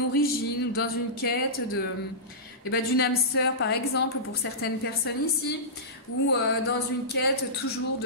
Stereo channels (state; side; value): normal; both; correlation -0.17